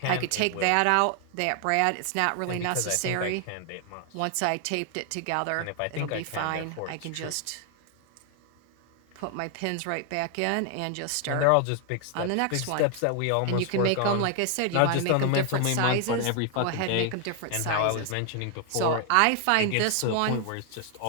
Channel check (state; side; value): different; both; correlation 0.00